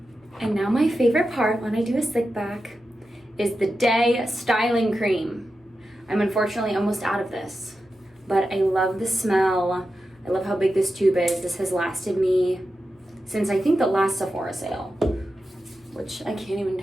And now my favorite part when I do a slick back is the Day Styling Cream. I'm unfortunately almost out of this, but I love the smell. I love how big this tube is. This has lasted me since I think the last Sephora sale, which I can't even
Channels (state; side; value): normal; both; correlation 0.91